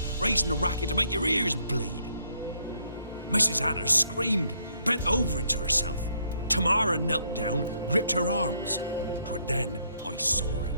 raising a racket to make your ears bleed. Mrs. Anna screamed, bent over into herself. Tamara knelt down, gripped her arms. 'Twere then I saw it.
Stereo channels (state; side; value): inverted; both; correlation -0.71